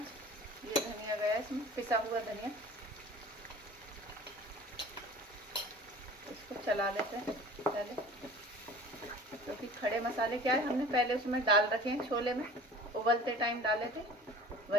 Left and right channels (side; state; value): both; normal; correlation 0.43